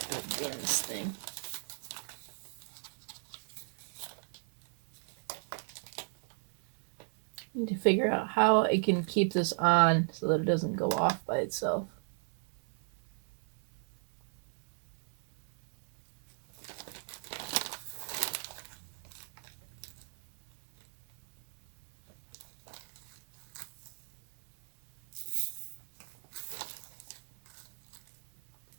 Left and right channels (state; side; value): silent; left; digital silence